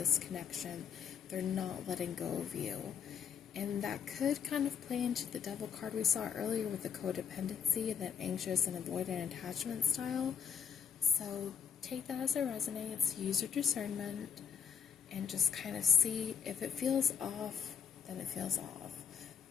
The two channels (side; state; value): right; quieter; 7.3 dB